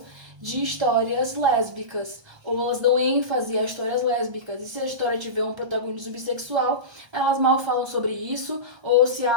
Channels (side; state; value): left; late; 1.3 ms